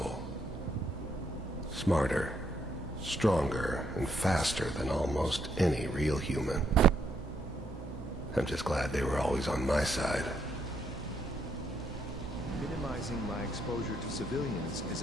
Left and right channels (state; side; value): normal; both; correlation 0.75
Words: Smarter, stronger, and faster than almost any real human. I'm just glad they were always on my side. Minimizing my exposure to civilians is